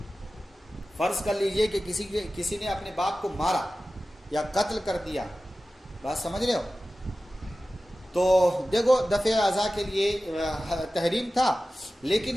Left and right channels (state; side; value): normal; both; correlation 0.95